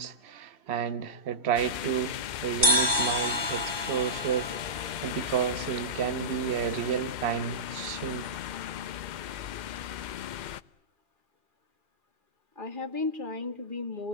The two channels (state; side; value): late; left; 2.6 ms